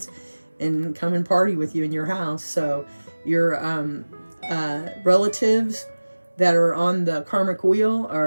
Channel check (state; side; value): inverted; both; correlation -1.00